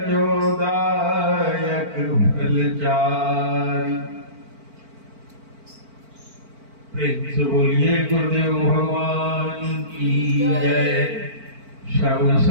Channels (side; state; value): left; late; 4.5 ms